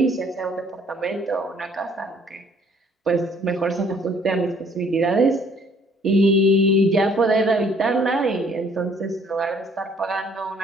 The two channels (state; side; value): normal; both; correlation 0.60